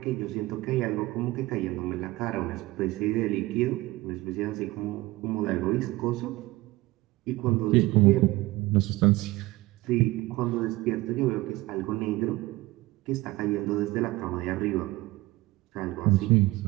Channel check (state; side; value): quieter; left; 19.4 dB